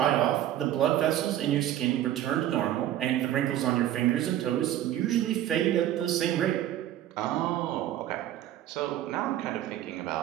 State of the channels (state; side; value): quieter; left; 12.3 dB